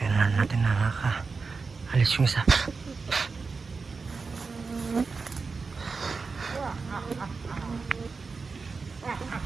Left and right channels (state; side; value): quieter; left; 4.5 dB